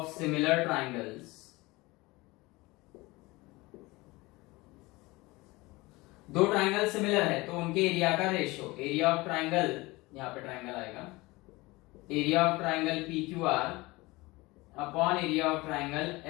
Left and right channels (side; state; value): right; quieter; 22.1 dB